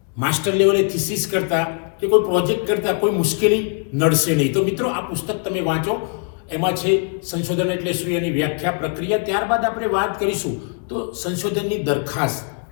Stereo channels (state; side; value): quieter; right; 39.8 dB